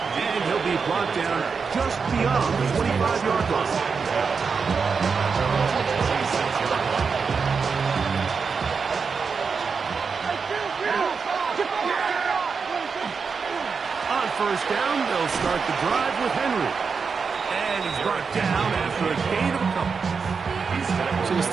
he'll be brought down just beyond the 25-yard line. On first down, they'll start the drive with Henry. And he's brought down after a gain of a couple. So this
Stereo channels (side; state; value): left; quieter; 5.4 dB